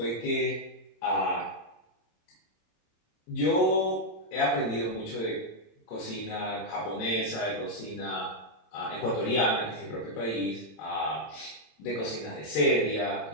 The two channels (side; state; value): right; late; 28 ms